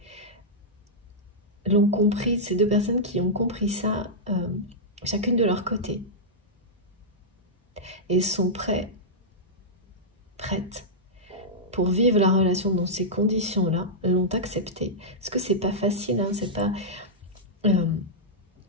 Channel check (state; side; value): normal; both; correlation -0.10